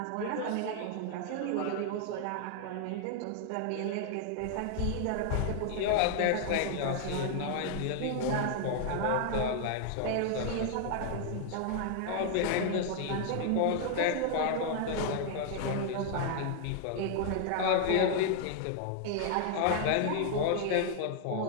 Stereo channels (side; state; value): both; different; correlation 0.00